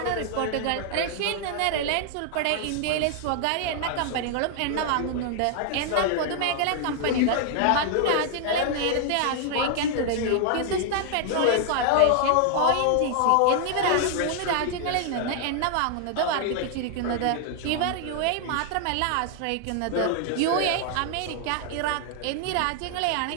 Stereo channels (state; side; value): different; both; correlation 0.00